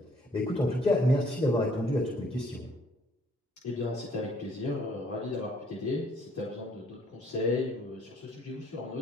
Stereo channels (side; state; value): both; normal; correlation 0.63